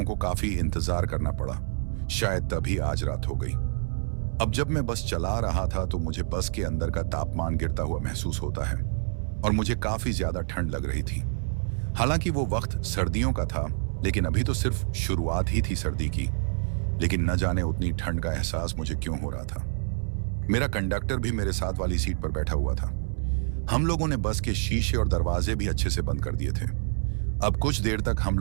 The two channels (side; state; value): left; silent; 60 dB below the other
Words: को काफी इंतजार करना पड़ा, शायद तभी आज रात हो गई। अब जब मैं बस चला रहा था तो मुझे बस के अंदर का तापमान गिरता हुआ महसूस होता है और मुझे काफी ज्यादा ठंड लग रही थी। हालांकि वो वक्त सर्दियों का था, लेकिन अभी तो सिर्फ शुरुआत ही थी सर्दी की। लेकिन न जाने उतनी ठंड का एहसास मुझे क्यों हो रहा था। मेरा कंडक्टर भी मेरे साथ वाली सीट पर बैठा हुआ था। हम लोगों ने बस के शीशे और दरवाजे भी अच्छे से बंद कर दिए थे। अब कुछ देर तक हम